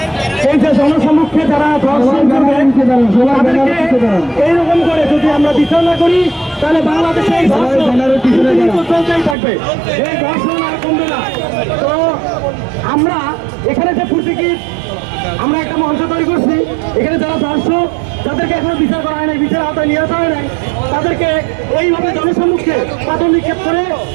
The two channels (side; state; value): left; drops out; at 9.3 s